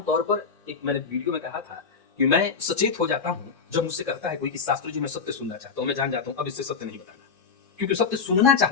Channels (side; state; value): right; quieter; 5.6 dB